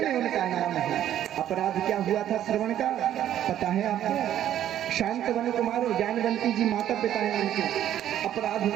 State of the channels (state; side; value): quieter; left; 11.3 dB